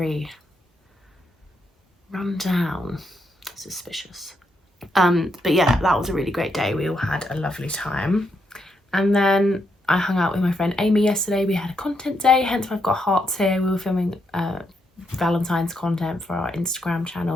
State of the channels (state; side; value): normal; both; correlation 0.79